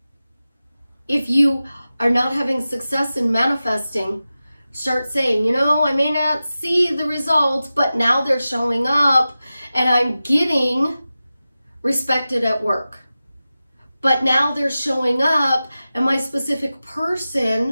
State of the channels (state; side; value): inverted; both; correlation -0.95